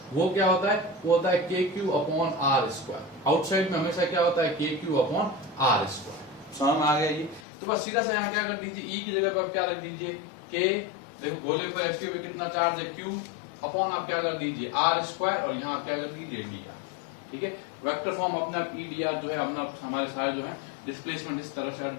वो क्या होता है, वो होता है KQ/r²। आउटसाइड में हमेशा क्या होता है, KQ/r²। समझ में आ गया ये? तो बस सीधा सा यहाँ क्या कर दीजिए, E की जगह पर आप क्या रख दीजिए, K, देखो गोले पर इसके भी कितना चार्ज है, Q, अपॉन आप क्या कर दीजिए, r², और यहाँ आप क्या कर दीजिए, dr। ठीक है, वेक्टर फॉर्म अपना E dr जो है अपना हमारे सारे जो है डिस्प्लेसमेंट इस तरह से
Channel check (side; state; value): right; drops out; at 7.5 s